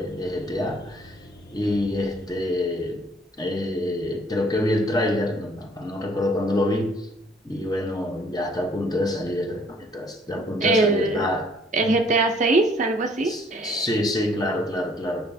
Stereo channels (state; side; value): normal; both; correlation 0.61